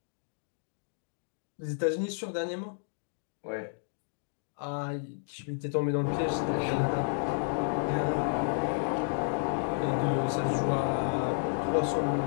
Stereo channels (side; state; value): right; silent; digital silence